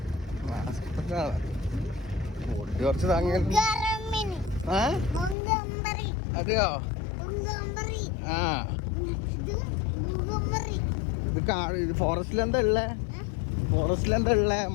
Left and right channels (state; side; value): drops out; right; at 5.4 s